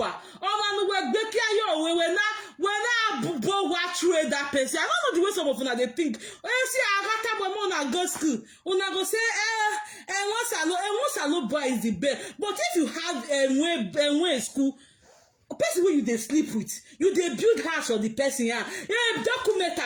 Oma nu wegbe kia yo we na bowa through that person. I don't know the way some of una they think. When see agata bomo na go school, una go say once alone boy is the best. But if you have a school, a person where you they sleep with, you they build house for the person here. Document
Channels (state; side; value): identical; both; correlation 1.00